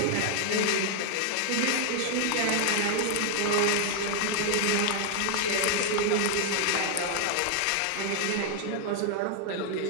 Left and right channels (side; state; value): both; different; correlation 0.00